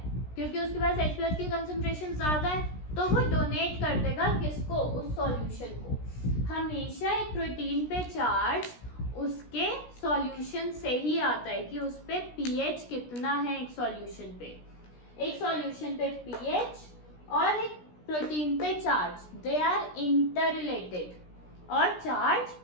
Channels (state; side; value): late; right; 16 ms